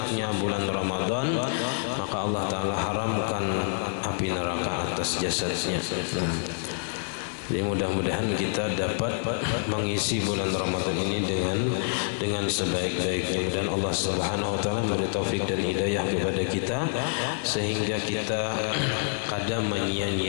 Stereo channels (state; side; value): silent; right; 60 dB below the other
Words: bulan Ramadan, maka Allah Taala haramkan api neraka atas jasadnya. Nah, jadi mudah-mudahan kita dapat mengisi bulan Ramadan ini dengan sebaik-baiknya, dan Allah Subhanahu wa taala memberi taufik dan hidayah kepada kita sehingga kita kada